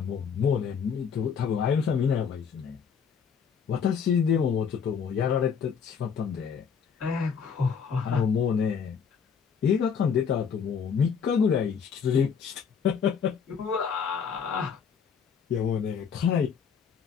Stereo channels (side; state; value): right; quieter; 6.7 dB